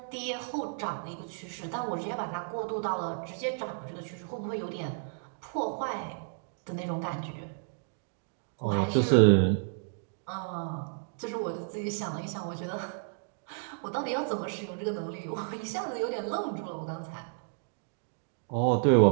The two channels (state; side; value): silent; left; digital silence